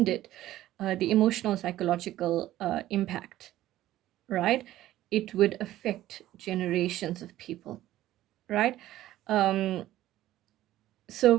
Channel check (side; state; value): left; quieter; 14.3 dB